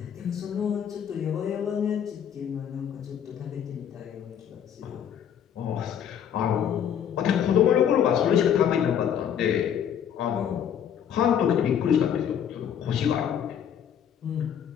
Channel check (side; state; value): right; quieter; 8.8 dB